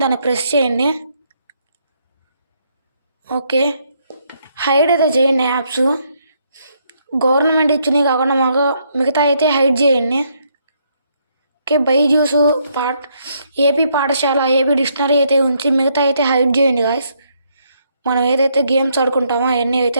దాన్ని ప్రెస్ చేయండి. ఓకే, హైడ్ అయితే చేయండి యాప్స్. గవర్నమెంట్ ఇచ్చినవి కాకుండా మిగతా అయితే హైడ్ చేయండి. ఓకే, బైజూస్ ఏపీ పాఠశాల, ఏపీ డిక్షనరీ అయితే ఉంచి మిగతా అయితే హైడ్ చేయండి గాయస్. మనం ఏదైతే గేమ్స్ ఆడుకుంటామో అవన్నీ అయితే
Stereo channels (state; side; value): inverted; both; correlation -0.73